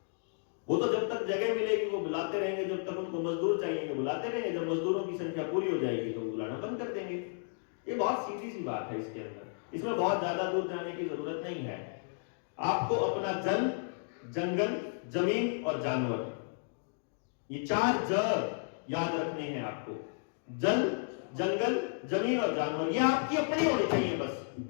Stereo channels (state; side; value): silent; right; digital silence